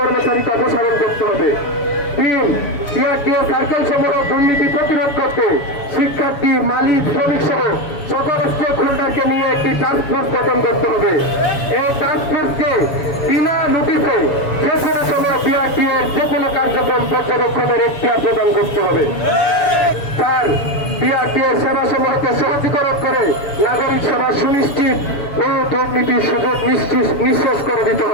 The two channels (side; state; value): right; late; 7.0 ms